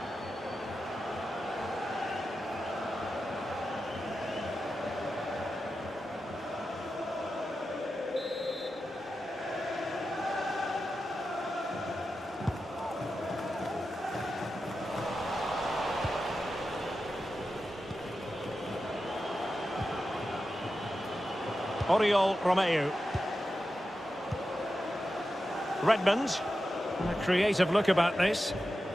Oriol Romeu. Redmond. A creative look about this.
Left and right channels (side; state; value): both; normal; correlation 0.91